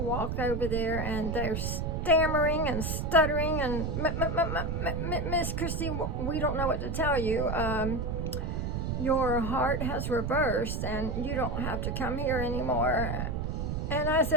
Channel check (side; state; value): right; noise; rumble, 2 dB below the sound